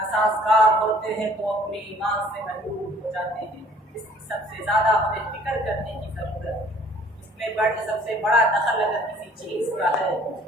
ہوتے ہیں تو اپنے ایمان سے محروم ہو جاتے ہیں۔ اس کی سب سے زیادہ ہمیں فکر کرنے کی ضرورت ہے۔ اس میں سب سے بڑا دخل اگر کسی چیز کا ہے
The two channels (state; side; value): normal; both; correlation 0.56